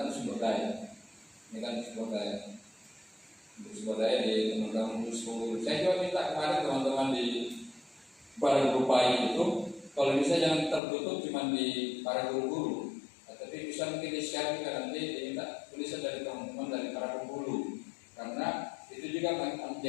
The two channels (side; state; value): right; drops out; at 10.8 s